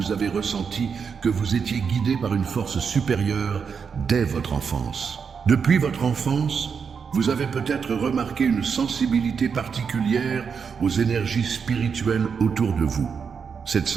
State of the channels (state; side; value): quieter; left; 6.2 dB